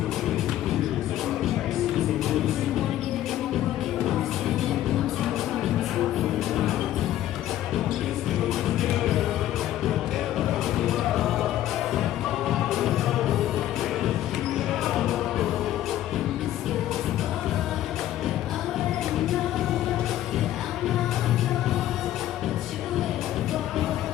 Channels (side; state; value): right; quieter; 13.1 dB